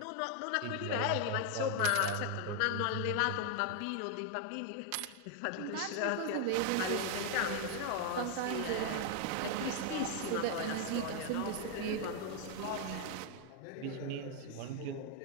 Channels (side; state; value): both; different; correlation 0.00